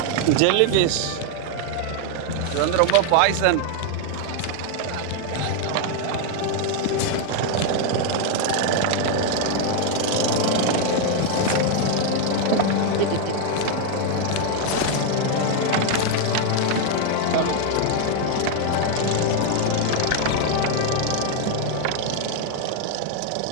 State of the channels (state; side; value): different; both; correlation 0.00